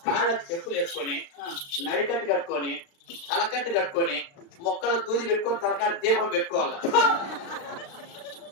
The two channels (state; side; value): late; right; 36 ms